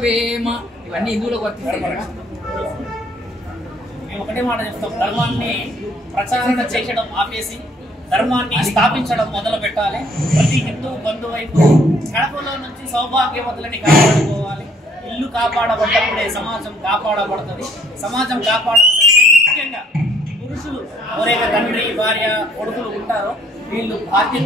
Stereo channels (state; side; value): normal; both; correlation 0.63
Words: ఇవన్నీ హిందువులకు వర్తిస్తాయి. మేము ఒకటే మాట చెప్తాం, ధర్మాన్ని ప్రచారణ చేయడం ఆపేసి ధర్మాన్ని స్థాపించడం మొదలు పెట్టాలి. ప్రతి హిందూ బంధువైపు కడపలో నుంచి సౌభాగ్యవతులని కాపాడుకోవాలి. ఇల్లు కాపాడబడ్డప్పుడే సమాజం కాపాడబడుతుంది. సమాజం కాపాడాలంటే ముఖ్యంగా పురుషులు ఎవరైతే తండ్రి భార్య కొడుకులు ఉంటారో వీళ్ళు